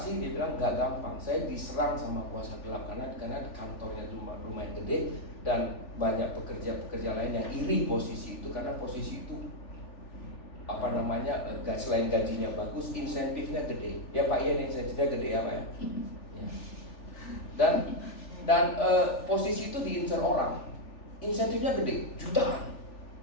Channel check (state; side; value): late; right; 3.4 ms